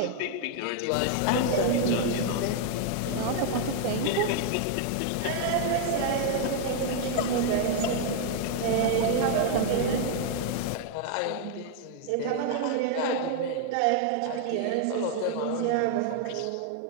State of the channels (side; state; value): both; different; correlation 0.00